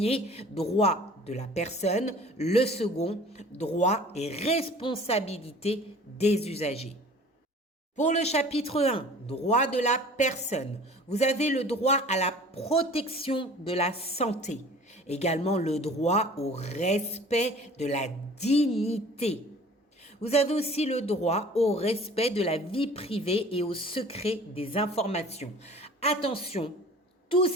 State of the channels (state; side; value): normal; both; correlation 0.46